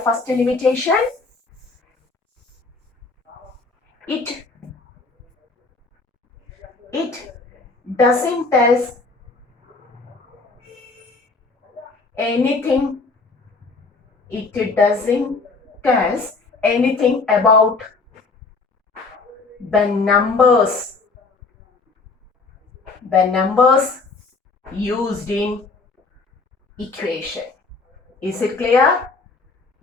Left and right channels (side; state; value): right; quieter; 4.0 dB